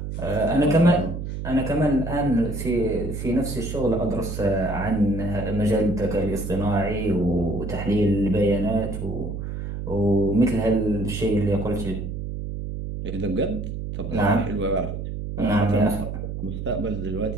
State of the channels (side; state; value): right; noise; hum, 6 dB below the sound